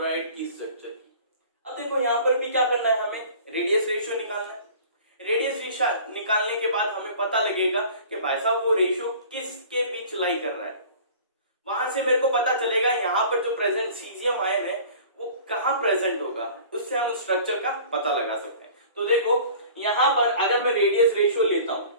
की स्ट्रक्चर की। अब देखो यहाँ पर भी क्या करना है, हमें रेडियस रेशियो निकालना है। रेडियस रेशियो निकालने के बाद हमें पता लगेगा कि भाई साहब वो रेशियो किसके बीच लाई कर रहा है। वहां से मेरे को पता चलेगा यहाँ पर जो प्रेजेंट सीजियम आयन है वो कहाँ प्रेजेंट होगा, उससे हम स्ट्रक्चर का पता लगा सकते हैं। तो देखो यहाँ पर अगर मैं रेडियस रेशियो लेता हूं,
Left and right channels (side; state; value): both; inverted; correlation -0.45